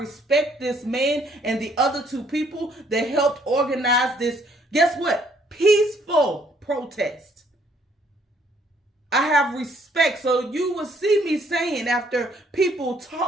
this man and the other two people that helped organize this, guess what? Peaceful protest. I have respect. So you will see me saying, after people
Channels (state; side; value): normal; both; correlation 0.65